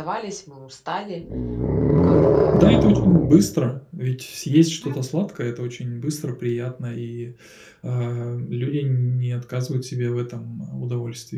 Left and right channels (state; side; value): identical; both; correlation 1.00